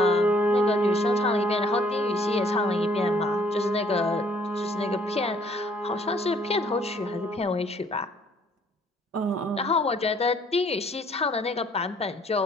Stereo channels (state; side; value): normal; both; correlation 0.63